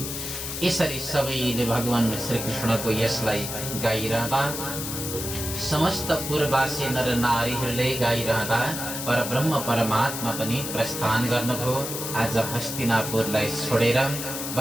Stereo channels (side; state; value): left; noise; hiss, 5 dB below the sound